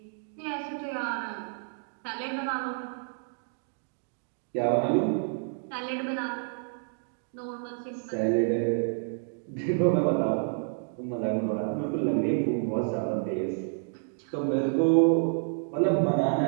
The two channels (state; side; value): silent; left; digital silence